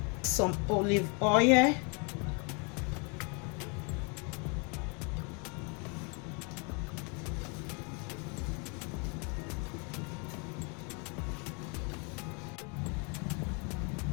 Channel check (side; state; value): right; quieter; 34.0 dB